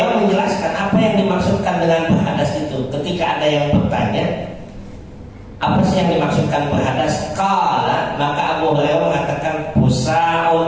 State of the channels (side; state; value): both; identical; correlation 1.00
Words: menjelaskan apa yang dimaksudkan dengan berhadas itu. Ketika ada yang bertanya, apa sih yang dimaksudkan berhadas? Qala, maka Abu Hurairah mengatakan busaun